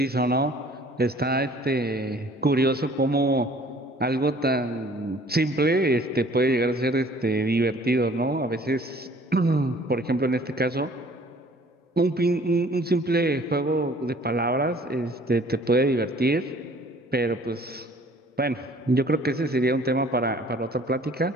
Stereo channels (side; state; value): both; normal; correlation 0.54